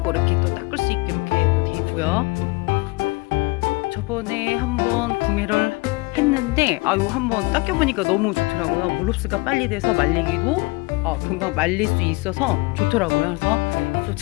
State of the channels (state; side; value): quieter; right; 24.9 dB